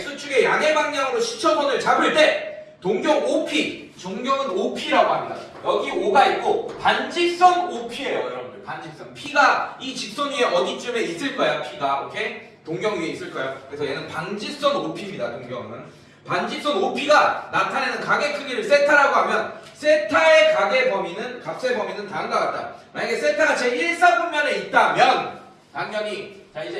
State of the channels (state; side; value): identical; both; correlation 1.00